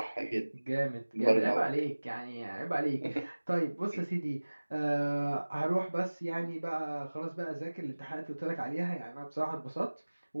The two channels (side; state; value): both; inverted; correlation -1.00